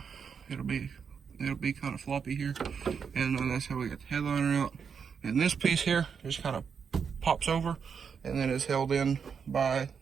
it'll be kind of floppy here. And that's how we get the headliner out. And this piece here just kind of pops over, and then is held in by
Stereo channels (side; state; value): left; quieter; 6.5 dB